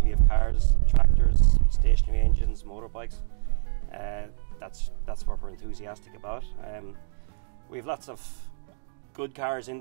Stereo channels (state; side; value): silent; left; digital silence